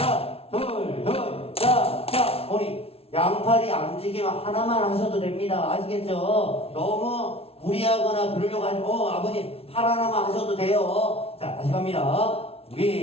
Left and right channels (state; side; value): late; right; 0.28 ms